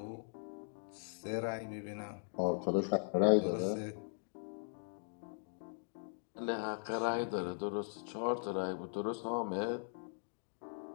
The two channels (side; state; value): right; silent; digital silence